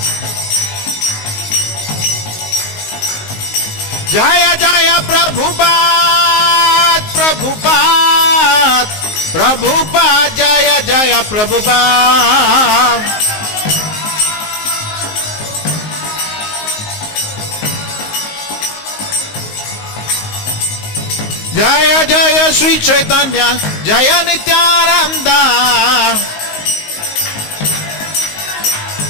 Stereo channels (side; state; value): right; late; 19 ms